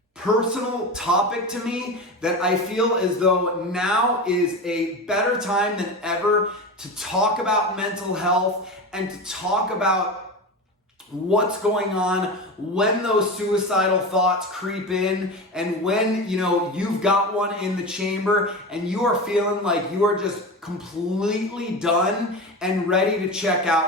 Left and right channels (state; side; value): normal; both; correlation 0.25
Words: personal topic to me that I feel as though now is a better time than ever to talk about mental health and to talk about what's going on when those suicidal thoughts creep in and when you've got one in the chamber and you are feeling like you are just completely done and ready to check